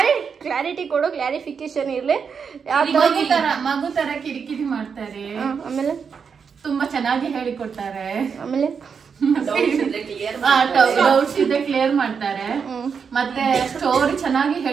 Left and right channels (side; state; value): left; quieter; 6.2 dB